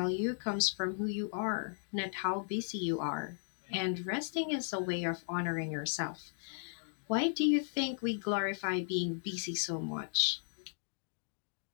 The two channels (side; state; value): right; silent; digital silence